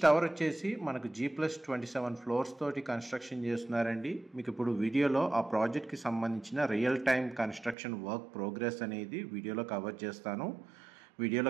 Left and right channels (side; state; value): left; drops out; at 7.8 s